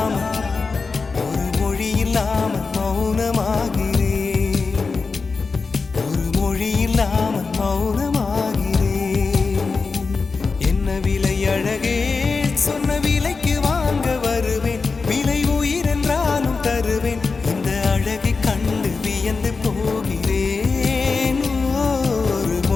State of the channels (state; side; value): quieter; right; 4.4 dB